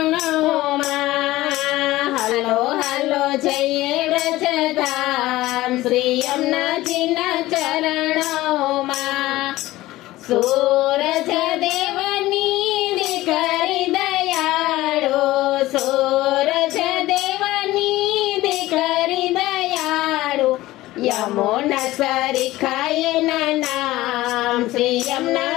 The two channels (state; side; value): quieter; right; 17.2 dB